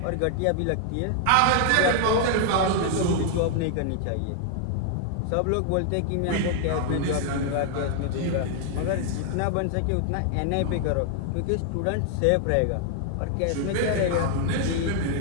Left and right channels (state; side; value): different; both; correlation 0.00